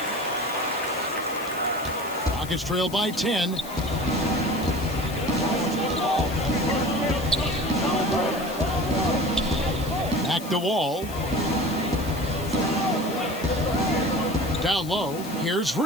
Rockets trail by 10. Back to Wall. Down low, here's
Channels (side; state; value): left; noise; hiss, 15 dB below the sound